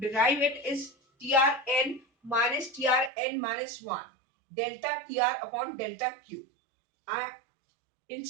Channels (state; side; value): drops out; left; at 3.1 s